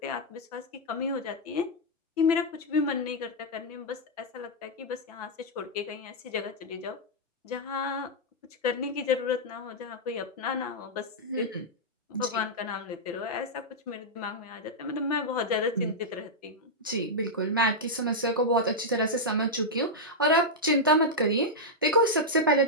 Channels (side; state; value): both; normal; correlation -0.05